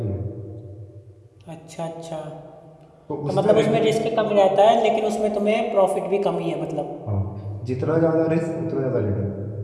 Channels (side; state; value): both; identical; correlation 1.00